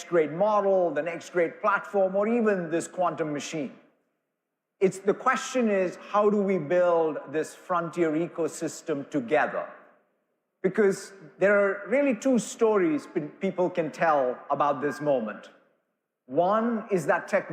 great model, the next great platform, or even this quantum machine. The question is, how do we build this frontier ecosystem together? Because there are really 2 stories people can tell about this moment. One is that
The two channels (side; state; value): both; identical; correlation 1.00